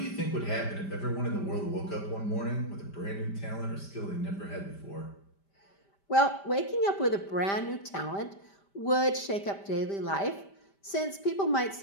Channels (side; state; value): right; late; 5.1 ms